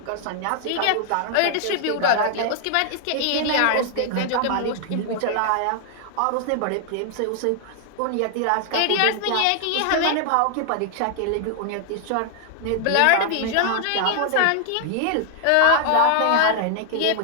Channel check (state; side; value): different; both; correlation 0.00